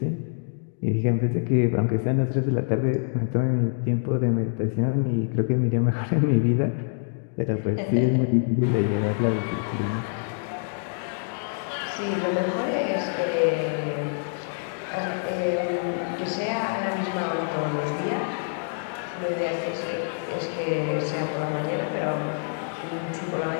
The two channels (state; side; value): silent; right; digital silence